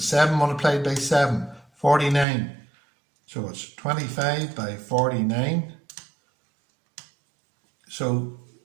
multiplied by 7, 49. So it's 25 by 49. So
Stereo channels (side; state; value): left; drops out; at 2.2 s